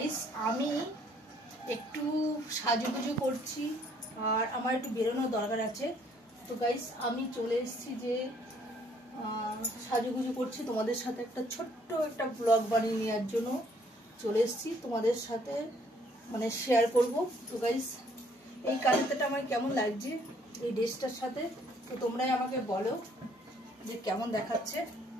আমি একটু সাজুগুজু করছি আর আমার একটু বেরোনোর দরকার আছে। তো গাইস আমি চলে এসেছি যে সাজুগুজু করছি, তোমাদের সাথে একটা ছোট্ট একটা ব্লগ বানিয়ে নেওয়ার জন্য চলে এসেছি, তোমাদের সাথে মানে শেয়ার করব। তো গাইস এই কাজটা আমার কেমন লাগছে এই ড্রেসটার সাথে, তো তোমরাই আমাকে বলো যে কেমন দেখাচ্ছে।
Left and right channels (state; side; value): normal; both; correlation 0.64